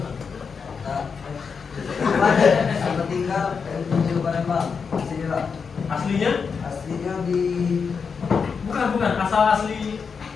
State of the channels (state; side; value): quieter; right; 5.7 dB